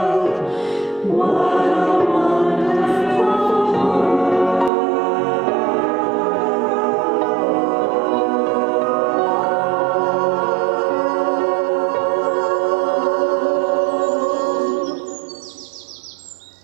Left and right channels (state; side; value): drops out; left; at 4.7 s